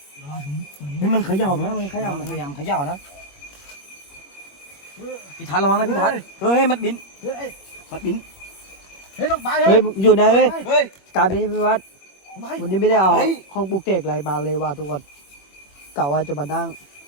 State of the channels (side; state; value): right; late; 21 ms